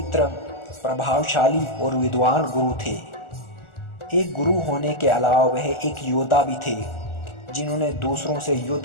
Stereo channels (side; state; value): right; late; 1.4 ms